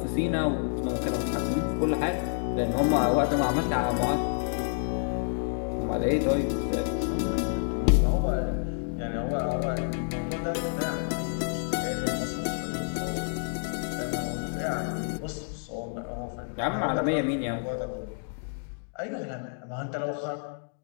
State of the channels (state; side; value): silent; right; digital silence